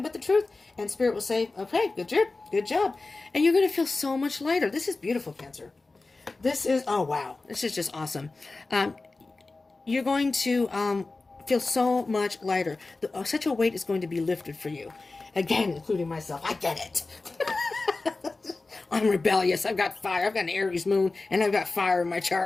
but the truth. And Spirit will say, okay, good job. And you're going to feel so much lighter. This is beautiful, Cancer. This is, oh, wow. This is just awesome. You're going to feel so much lighter. Such a weight is going to be lifted for you. Again, including myself. I get it. I'm rebellious. I've got fire. I've got an Aries moon, and I've got fire in my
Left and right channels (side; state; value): right; quieter; 3.5 dB